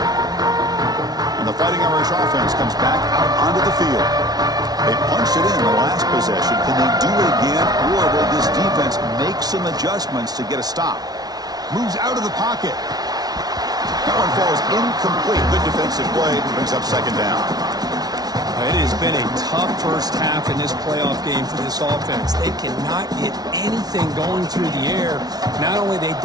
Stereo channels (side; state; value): left; late; 0.19 ms